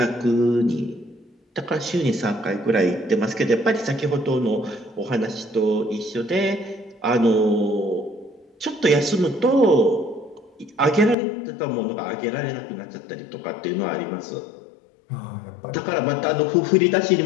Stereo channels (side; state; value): right; drops out; at 11.2 s